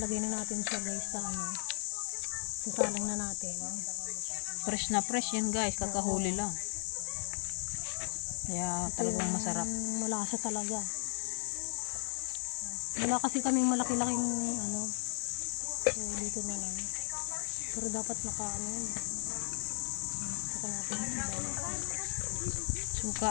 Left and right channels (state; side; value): silent; right; 55 dB below the other